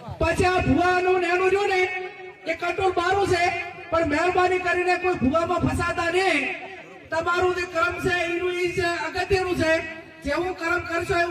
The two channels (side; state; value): both; identical; correlation 1.00